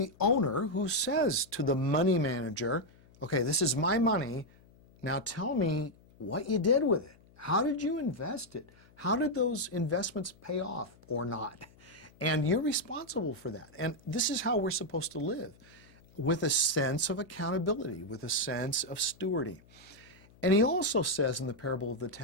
owner who says to the money manager, okay, this is my money, now tell me what you did with it. How did you invest it? How did those investments pay off or not? And you're responsible for that. And this is how we're supposed to live, with a sense of accountability, with a sense of stewarding. And he also says in the parable of the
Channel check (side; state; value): left; noise; hum, 27 dB below the sound